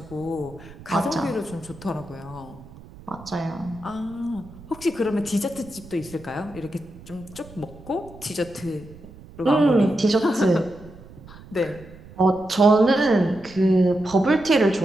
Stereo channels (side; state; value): right; noise; rumble, 19 dB below the sound